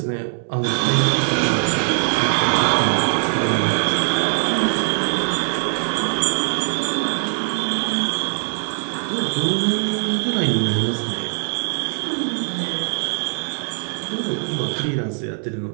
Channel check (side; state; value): left; silent; 65 dB below the other